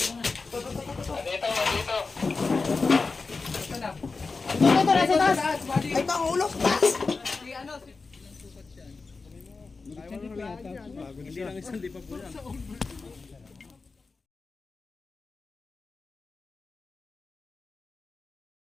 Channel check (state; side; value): quieter; right; 4.2 dB